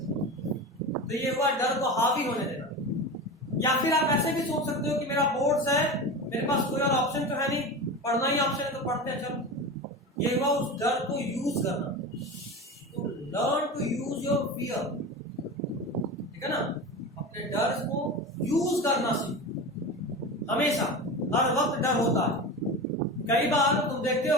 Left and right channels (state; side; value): normal; both; correlation 0.27